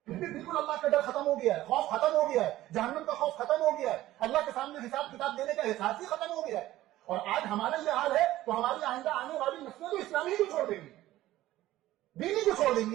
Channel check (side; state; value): left; quieter; 15.3 dB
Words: پھر بھی بالکل اللہ کا ڈر ختم ہو گیا ہے, خوف ختم ہو گیا ہے, جہنم کا خوف ختم ہو گیا ہے, اللہ کے سامنے حساب کتاب دینے کا احساس ہی ختم ہو گیا ہے. اور آج ہمارا یہ حال ہے تو ہماری آئندہ آنے والی نسلیں تو اسلامی کو چھوڑ دیں گی, دینی کو چھوڑ دیں